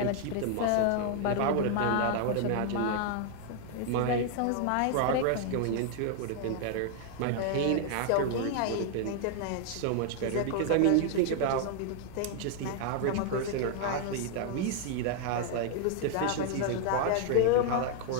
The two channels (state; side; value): different; both; correlation 0.00